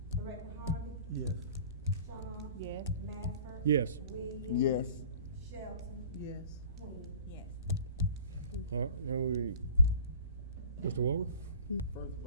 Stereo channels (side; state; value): both; inverted; correlation -0.45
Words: Director Harvey? Yes. Shaw. Yes. Mafford. Yes. Williams. Yes. Shelton. Yes. Queen. Yes. All right, now Mr. Walker? First of